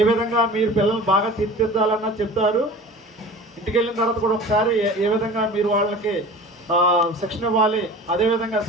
విధంగా మీరు పిల్లల్ని బాగా తీర్చిదిద్దాలన్నది చెప్తారు. ఇంటికి వెళ్ళిన తర్వాత కూడా ఒకసారి ఏ విధంగా మీరు వాళ్ళకి శిక్షణ ఇవ్వాలి, అదేవిధంగా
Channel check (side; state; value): both; normal; correlation 0.39